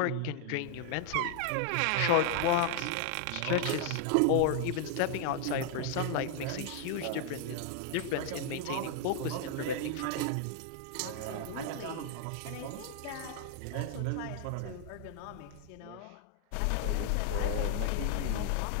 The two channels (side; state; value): both; different; correlation 0.00